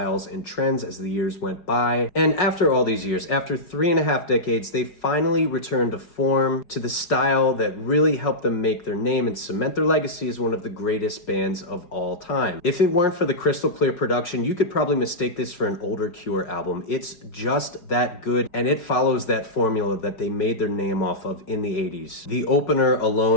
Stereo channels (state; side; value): late; right; 5.5 ms